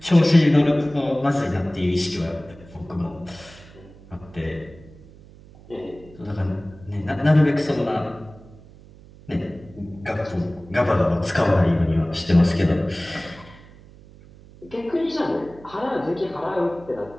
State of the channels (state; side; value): noise; right; hum, 22 dB below the sound